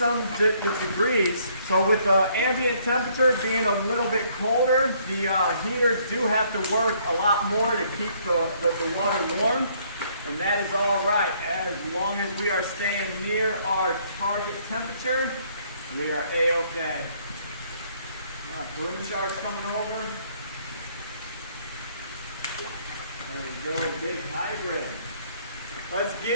degrees. So with the ambient temperature being a little bit colder, the heaters do have to work a lot more to keep the water warm. And that is all right, as long as we are staying near our target temperature, we are A-okay. Paroon sharks coming over. There we go, big hybrid. Let's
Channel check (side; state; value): both; inverted; correlation -0.65